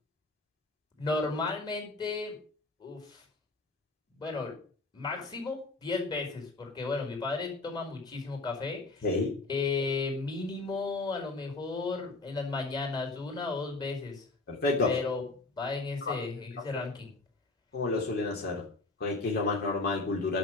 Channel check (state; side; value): quieter; right; 3.2 dB